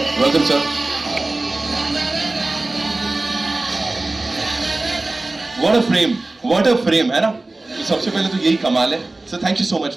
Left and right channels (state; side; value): quieter; left; 3.0 dB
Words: Welcome sir. What a frame है ना। तो सबसे पहले तो यही कमाल है sir. Thank you so much